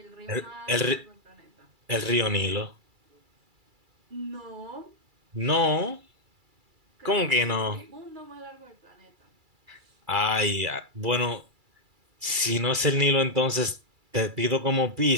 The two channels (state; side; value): late; left; 2.3 ms